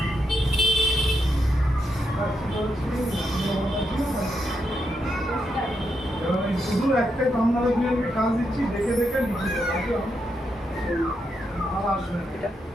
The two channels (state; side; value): normal; both; correlation 0.82